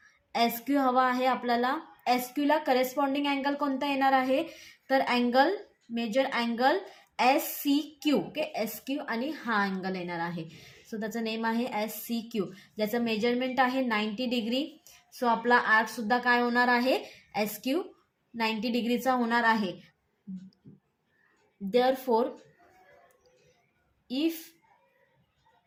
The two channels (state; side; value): identical; both; correlation 1.00